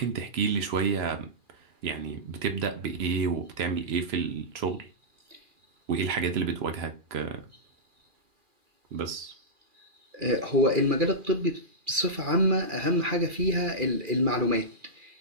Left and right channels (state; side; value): late; left; 2.4 ms